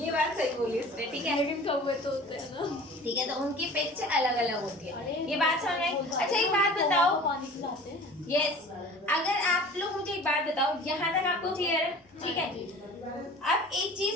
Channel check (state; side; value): normal; both; correlation 0.43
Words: बात सही बोली इसने, ठीक है। लेकिन कौवे तो होते हैं ना, ठीक है, तो उनकी पिच अलग अलग होती है, अरे ये बात समझ में आई। अच्छा एक बात बताओ, पानी पिलाते हैं। यस, अगर आप लोग मुझे एक बात बताओ, यहाँ तक आपको क्लियर है, ठीक है। अब एक